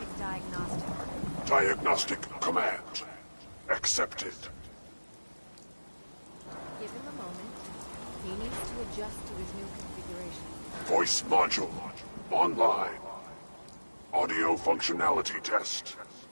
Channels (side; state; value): both; inverted; correlation -1.00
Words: diagnostic. Diagnostic command. Accepted. Give him a moment. He needs to adjust to his new configuration. Voice module. Online. Audio functionality test.